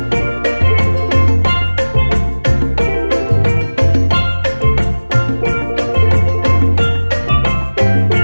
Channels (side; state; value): both; inverted; correlation -1.00